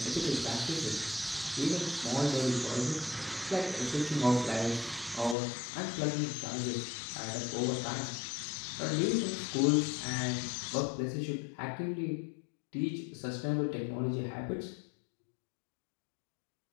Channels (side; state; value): right; drops out; at 5.4 s